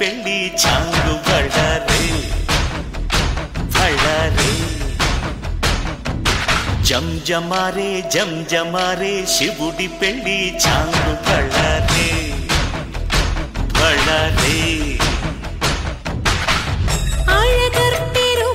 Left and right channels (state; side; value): identical; both; correlation 1.00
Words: చాంగు బళ్ళారే బళ్ళారే జంజమారే జంజమారే శివుడి పెళ్ళి చాంగు బళ్ళారే బళ్ళారే